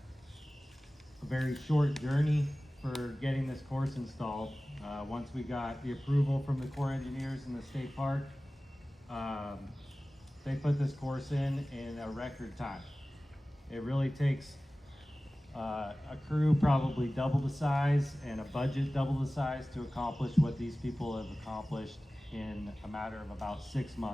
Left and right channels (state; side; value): normal; both; correlation 0.97